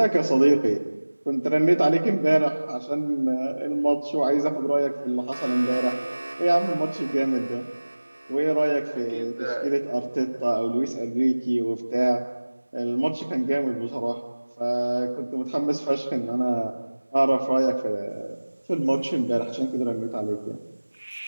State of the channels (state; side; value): inverted; both; correlation -1.00